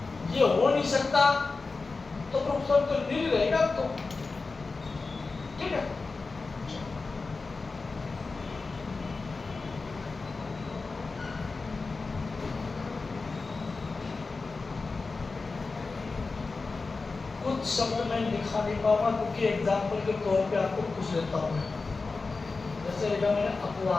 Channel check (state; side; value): quieter; right; 4.0 dB